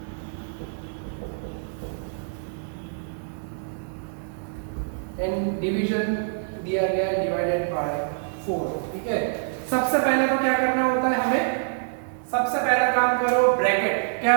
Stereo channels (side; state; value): left; silent; digital silence